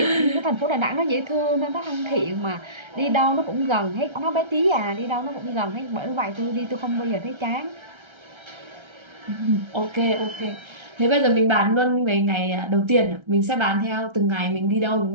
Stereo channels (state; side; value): late; left; 1.3 ms